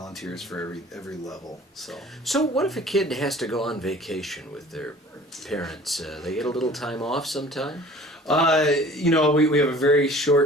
for every level. So what if a kid has to go on vacation with their parents? They get a little time off sometime? We have a very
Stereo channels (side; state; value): both; normal; correlation 0.47